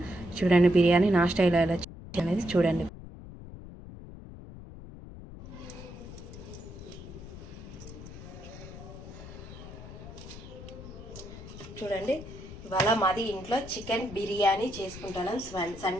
చూడండి, బిర్యానీ నా స్టైల్ ఎలా అనేది చూడండి. చూడండి, ఇవాళ మాది ఇంట్లో చికెన్ బిర్యానీ చేసుకుంటాను.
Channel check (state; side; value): noise; left; rumble, 14 dB below the sound